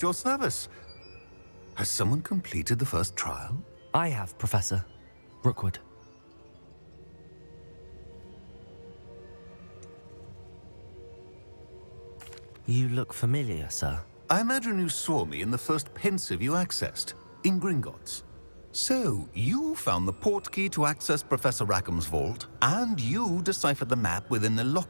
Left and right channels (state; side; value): inverted; both; correlation -1.00